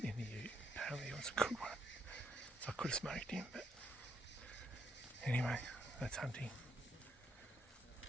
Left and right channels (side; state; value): both; normal; correlation 0.76